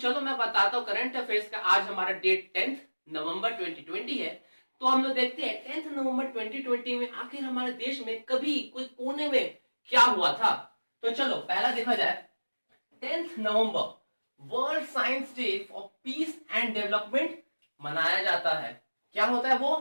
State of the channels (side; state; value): both; inverted; correlation -1.00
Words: मैं बताता हूँ करंट अफेयर्स का। आज हमारा डेट 10 नवंबर 2020 है। तो हम लोग देखते हैं 10 नवंबर 2020 में आखिर हमारे देश में कभी कोई कोने में क्या हुआ था। तो चलो पहला देखा जाए। 10 नवंबर world science day for peace and development मनाया जाता है। क्या होता है